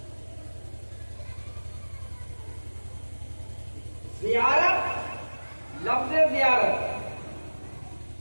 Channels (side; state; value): both; inverted; correlation -1.00